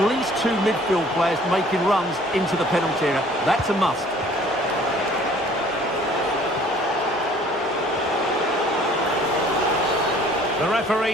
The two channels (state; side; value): normal; both; correlation 0.54